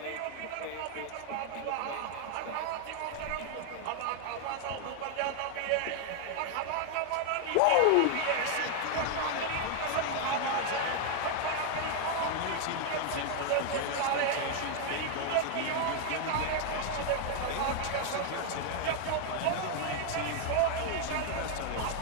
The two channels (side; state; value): both; different; correlation 0.00